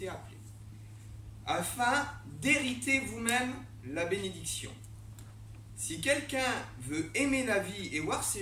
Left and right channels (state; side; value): identical; both; correlation 1.00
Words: appelés, afin d'hériter vous-même la bénédiction. Si quelqu'un veut aimer la vie et voir